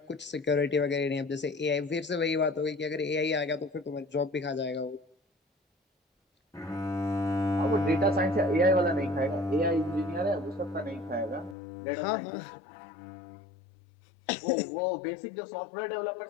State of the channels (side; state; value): right; drops out; at 11.6 s